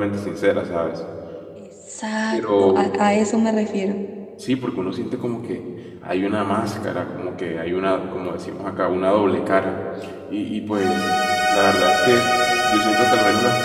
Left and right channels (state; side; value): identical; both; correlation 1.00